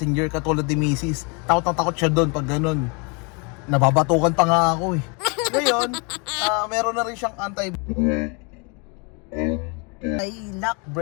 katulad ni Mrs. Takot na takot siya doon pag ganun. Nababatukan pa nga ako eh. Ngayon, meron na rin siyang anti-lock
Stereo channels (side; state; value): right; quieter; 32.9 dB